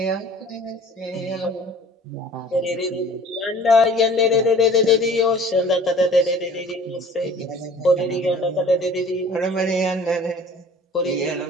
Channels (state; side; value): normal; both; correlation 0.47